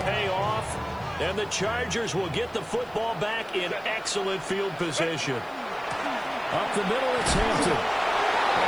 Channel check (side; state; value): left; noise; hiss, 29 dB below the sound